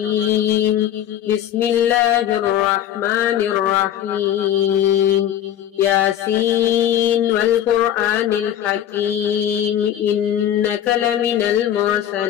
بسم الله الرحمن الرحيم. ياسين والقرآن الحكيم إنك لمن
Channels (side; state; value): right; quieter; 10.8 dB